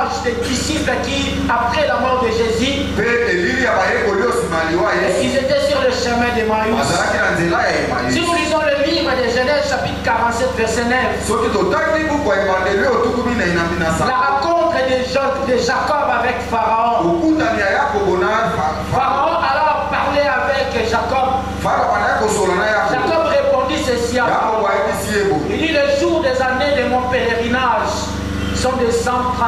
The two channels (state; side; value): identical; both; correlation 1.00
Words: des disciples qui, après la mort de Jésus, ils étaient sur le chemin d'Emmaüs. Si nous lisons le livre de Genèse chapitre 47 verset 9, la rencontre de Jacob avec Pharaon. Pharaon alors parlait avec Jacob. Jacob répondit ceci à Pharaon. Il dit: le jour des années de mon pèlerinage sont de